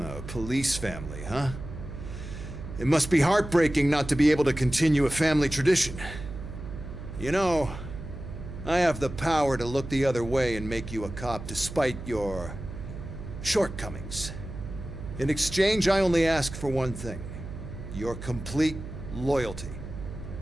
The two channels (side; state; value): right; noise; hum, 10 dB below the sound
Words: police family, huh? It must be heartbreaking not to be able to continue a family tradition. You know, I have the power to look the other way and make you a cop despite your shortcomings. In exchange, I only ask for one thing. Your complete loyalty.